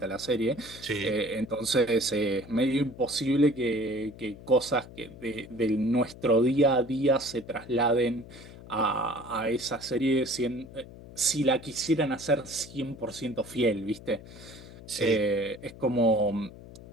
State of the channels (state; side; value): noise; left; hum, 17 dB below the sound